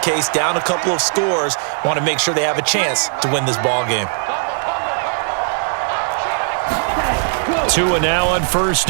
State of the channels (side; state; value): left; silent; digital silence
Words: down a couple of scores. Want to make sure they have a chance to win this ball game. Tua now on first